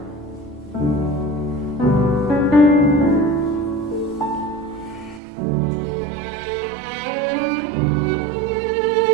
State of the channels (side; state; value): left; drops out; at 5.2 s